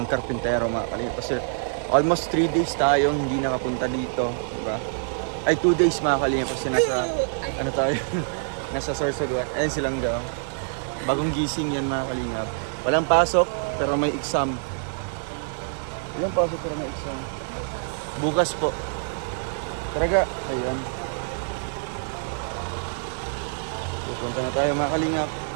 karpintero mga kalingap. Kasi almost 3 days tayong hindi nakapunta dito, diba? Ay 2 days mga kalingap kasi nasa ano tayo nasa Sorsogon. Ayun silang daw. Bagong gising yan mga kalingap. Walang pasok pero may exam. Walang pasok pero may exam. Bukas po. Talaga, ayun. Pupunta na tayo mga kalingap.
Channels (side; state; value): left; silent; digital silence